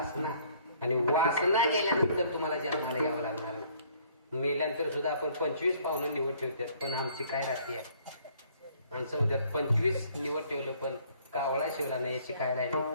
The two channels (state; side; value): inverted; both; correlation -0.60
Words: आणि वासना गेल्यानंतर तुम्हाला जन्माला यावं लागणार नाही. मेल्यानंतर सुद्धा आपण 25 पाहुणं निवड ठेवतात, पण आमची काय राहते माणसं म्हणतात 25 निवड ठेवलं पण कावळा शिवला नाही, याची काय राहिली.